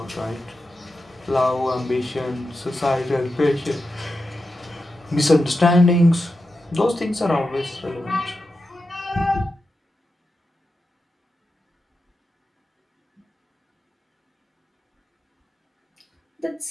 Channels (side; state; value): both; normal; correlation 0.90